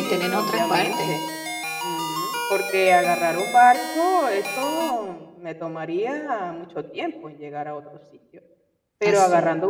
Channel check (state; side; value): identical; both; correlation 1.00